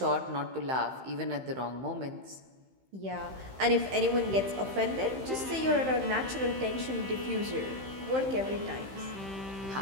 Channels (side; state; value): left; late; 15 ms